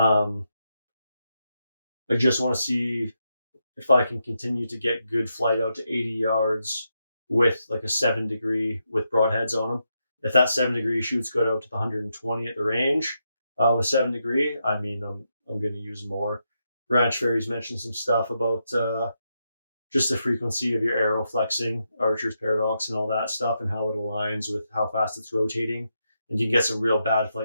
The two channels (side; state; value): both; inverted; correlation -0.83